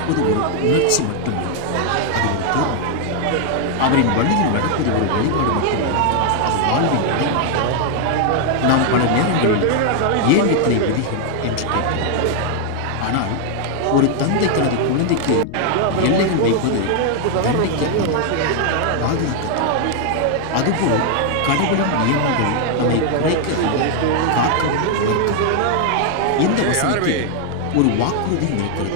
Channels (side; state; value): both; different; correlation 0.00